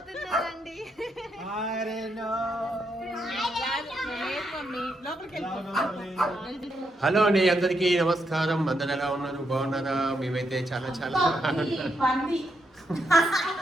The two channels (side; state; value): both; normal; correlation 0.80